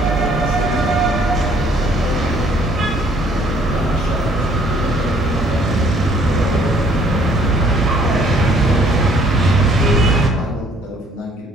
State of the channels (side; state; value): both; normal; correlation 0.61